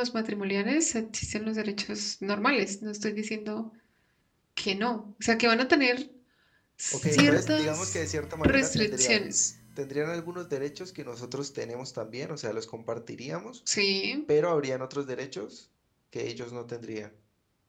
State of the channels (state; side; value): identical; both; correlation 1.00